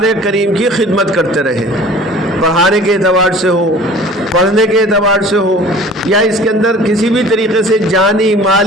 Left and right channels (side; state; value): both; normal; correlation 0.46